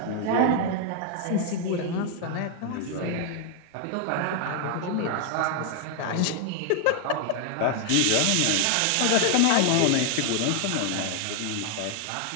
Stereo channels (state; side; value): different; both; correlation 0.00